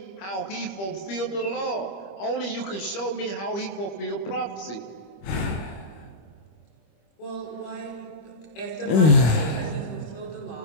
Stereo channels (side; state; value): right; late; 25 ms